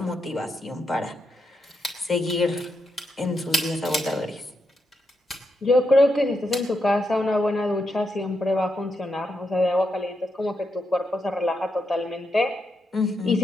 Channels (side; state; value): both; normal; correlation 0.83